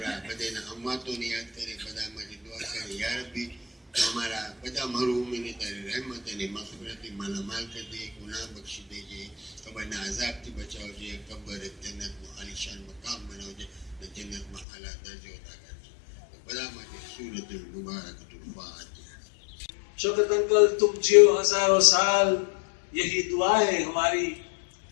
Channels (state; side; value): drops out; right; at 14.7 s